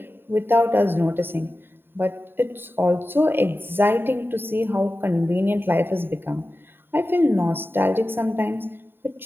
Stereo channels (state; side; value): late; left; 0.10 ms